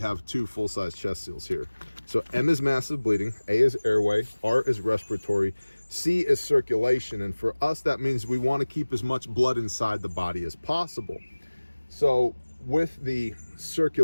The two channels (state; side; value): inverted; both; correlation -1.00